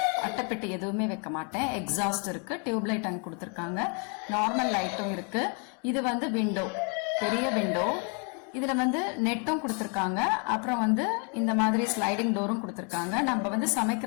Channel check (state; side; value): quieter; right; 37.9 dB